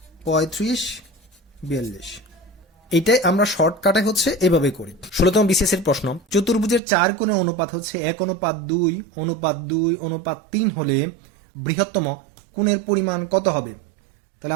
35 42। এইটাই আমরা শর্টকাটে হচ্ছে এভাবে করি। 16তম বিসিএস এর প্রশ্ন, চতুর্ভুজের 4 কোণের অনুপাত হচ্ছে 1:2:2:3 হলে বৃহত্তম কোণের পরিমাণ কত হবে? তাহলে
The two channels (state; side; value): drops out; left; at 6.8 s